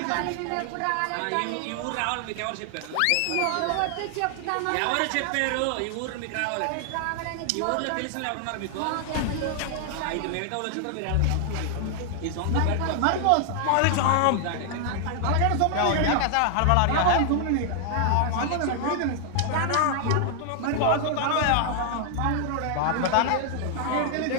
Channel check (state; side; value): different; both; correlation 0.00